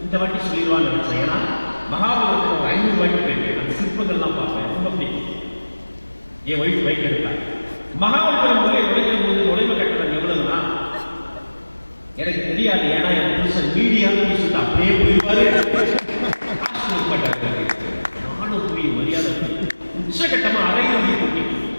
இந்த வாட்டி சொல்லிடுவான்னு நினைச்சேன். ஏன்னா மகாபலிபுரத்தில் ஒரு 500 ரூபாய்க்கு போயிருக்கேன். அந்த சிற்பங்கள்லாம் பார்ப்பேன், ரொம்ப பிடிக்கும். என் ஒய்ஃப் பைக் எடுத்தாங்க. மகாபலிபுரம் உள்ளே நுழைகிற போது நுழைவு கட்டணம் எவ்வளவுனா எனக்கு தெரியாது. ஏன்னா என் புருஷன் மீடியான்னு சொல்லிட்டு அப்படியே போயிடுவாரு. நானும் போய் மரியாதை உச்சகட்டமா அரையிறுதி போட்டி.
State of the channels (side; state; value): both; inverted; correlation -1.00